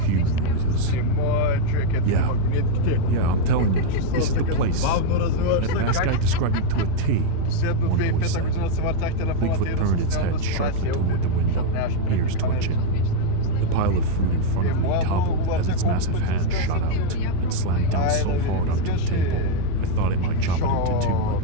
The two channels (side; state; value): both; different; correlation 0.00